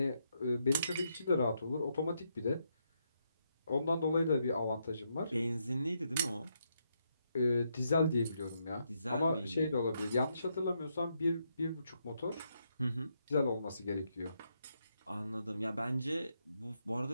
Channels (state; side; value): inverted; both; correlation -0.79